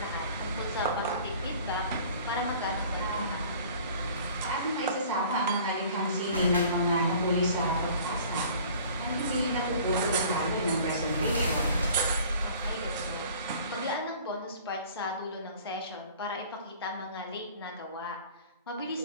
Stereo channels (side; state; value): both; inverted; correlation -0.49